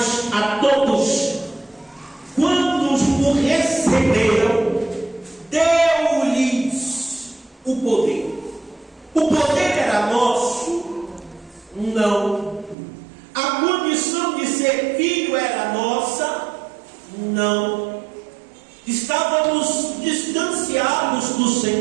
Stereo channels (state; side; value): drops out; left; at 12.8 s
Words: a todos, quando o receberam, deu-lhes o poder. O poder era nosso? Não. A condição de ser filho era nossa? Não. Estávamos distanciados do